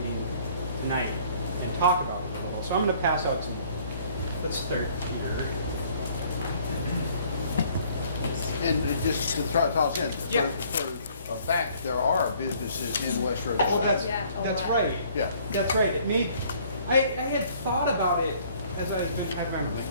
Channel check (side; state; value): both; inverted; correlation -0.59